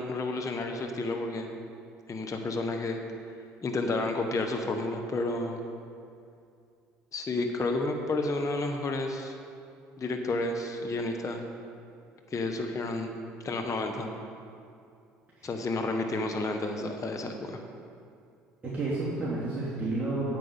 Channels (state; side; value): normal; both; correlation 0.62